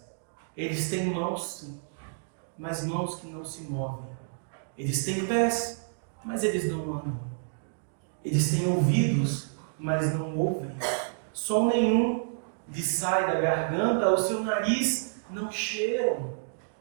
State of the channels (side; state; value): left; silent; digital silence